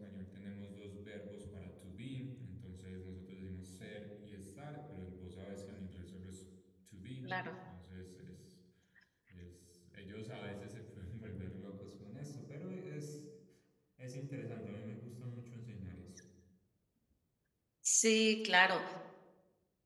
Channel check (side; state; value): both; identical; correlation 1.00